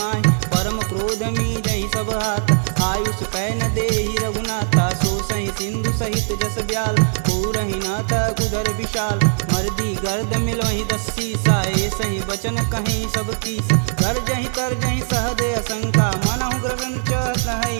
परम क्रोध मीजहि सब हाथ, आयुष पै न देहि रघुनाथा। सो सहि सिंधु सहित जस ब्याल, पूरहि नाथा कुधर विशाल। मर्दी गर्द मिलहि 10 सीसा, सही बचन कहीं सब कीस। गर्जहि तरजहि सहदे असंका, मनहु ग्रसन चहत है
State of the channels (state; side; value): silent; left; 63 dB below the other